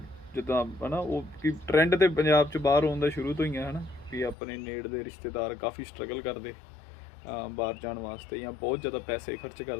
ਜਿੱਦਾਂ ਹਨਾ ਉਹ ਕਿ ਟ੍ਰੈਂਡ ਤੇ ਪੰਜਾਬ 'ਚ ਬਾਹਰ ਆਉਣ ਦਾ ਸ਼ੁਰੂ ਤੋਂ ਹੀ ਆ ਹਨਾ ਵੀ ਆਪਣੇ ਨੇੜ ਦੇ ਰਿਸ਼ਤੇਦਾਰ ਕਾਫੀ ਸਟਰਗਲ ਕਰਦੇ ਬਾਹਰ ਜਾਣ ਵਾਸਤੇ ਜਾਂ ਬਹੁਤ ਜ਼ਿਆਦਾ ਪੈਸੇ ਖਰਚ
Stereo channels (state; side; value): drops out; right; at 4.4 s